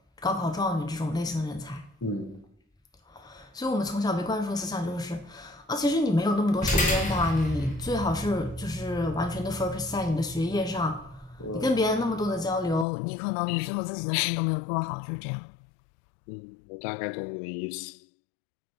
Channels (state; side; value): drops out; right; at 12.9 s